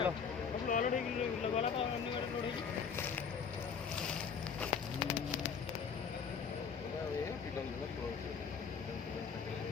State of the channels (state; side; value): quieter; right; 6.4 dB